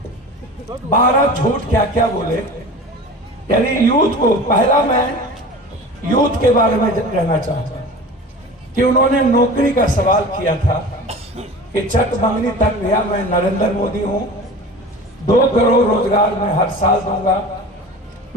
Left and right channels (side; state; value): both; normal; correlation 0.37